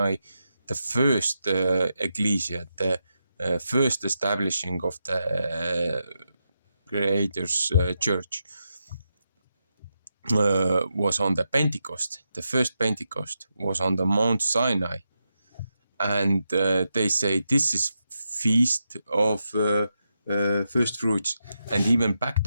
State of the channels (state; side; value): inverted; both; correlation -0.86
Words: the first ecclesia, the first establishing of the Creator's church. Was on the Pentecost. The first Pentecost was on the Mount Sinai, and they say this is feast of first fruits. And even back